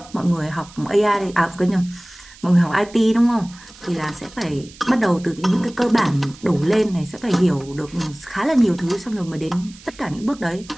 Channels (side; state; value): right; noise; hiss, 21 dB below the sound